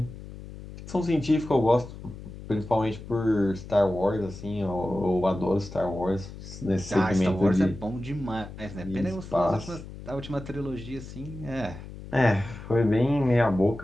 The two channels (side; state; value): left; noise; hum, 13 dB below the sound